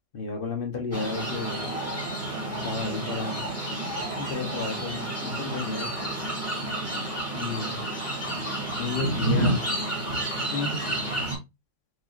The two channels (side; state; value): both; normal; correlation -0.12